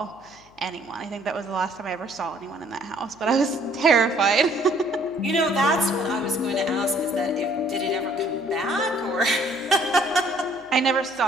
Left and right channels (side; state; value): left; noise; hum, 29 dB below the sound